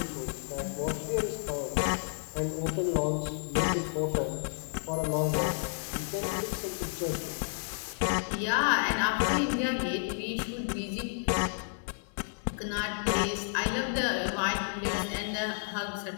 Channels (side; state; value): right; silent; 57 dB below the other